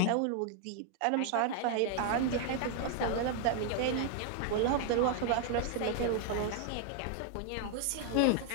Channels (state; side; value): different; both; correlation 0.00